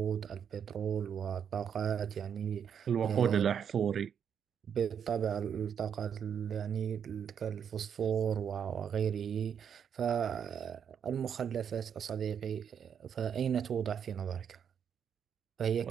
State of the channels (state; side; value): quieter; left; 7.9 dB